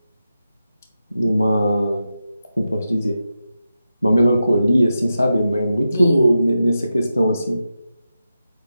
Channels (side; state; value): both; inverted; correlation -0.89